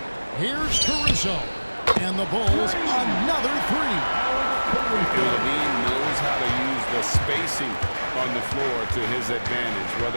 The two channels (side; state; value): both; inverted; correlation -1.00